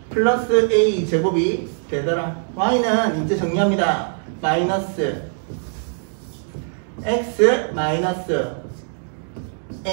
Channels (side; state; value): left; silent; digital silence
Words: 플러스 a 제곱이 되더라. y는 이제 정리합니다. 마이너스 x 마이너스